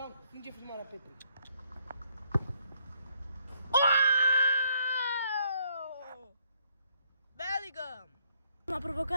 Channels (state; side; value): inverted; both; correlation -0.70